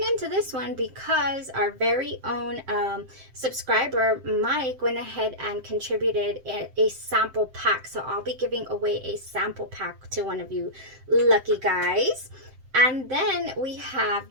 into this one, because our very own subscriber Mike went ahead and contributed a sample pack, so I'll be giving away a sample pack to one of you lucky guys. And then we have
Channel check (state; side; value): late; left; 7.7 ms